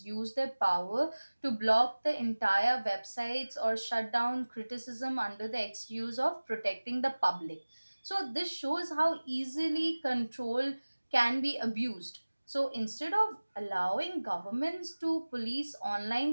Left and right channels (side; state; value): both; inverted; correlation -1.00